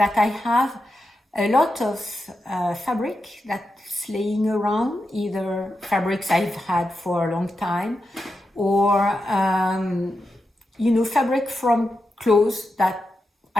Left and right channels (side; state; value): both; normal; correlation 0.88